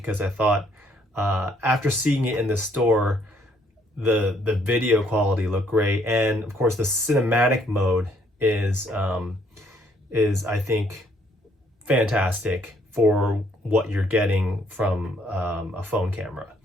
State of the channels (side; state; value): both; normal; correlation 0.67